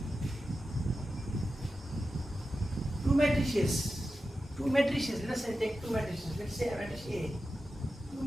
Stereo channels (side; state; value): both; normal; correlation 0.92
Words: Two matrices, let's say take two matrices, let's say matrix A. Two